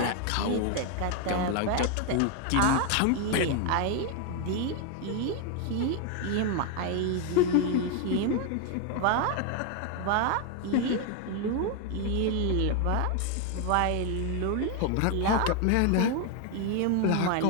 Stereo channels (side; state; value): both; different; correlation 0.01